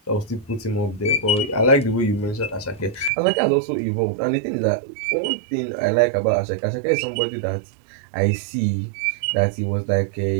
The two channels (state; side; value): drops out; left; at 3.1 s